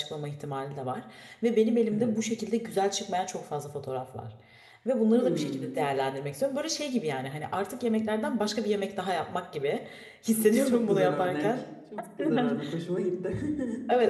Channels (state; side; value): identical; both; correlation 1.00